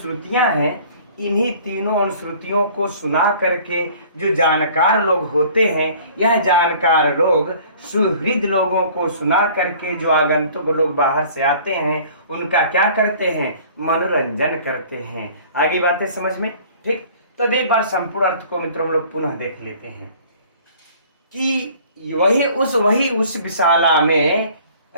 हैं, इन्हीं तीनों अनुश्रुतियों को सुना करके जो जानकार लोग होते हैं, यह जानकार लोग सुहृद लोगों को सुना करके जो आगंतुक लोग बाहर से आते हैं, उनका क्या करते हैं, मनोरंजन करते हैं। आगे बातें समझ में। ठीक, तो एक बार संपूर्ण अर्थ को मित्रों हम लोग पुनः देख लेते हैं कि वही उस विशाला में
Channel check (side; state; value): both; inverted; correlation -0.50